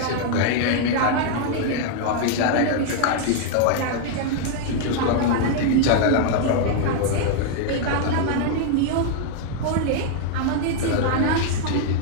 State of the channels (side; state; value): both; different; correlation 0.00